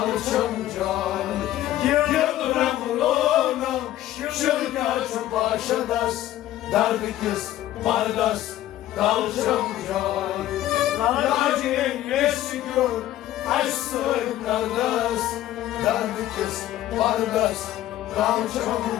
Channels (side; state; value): right; quieter; 13.8 dB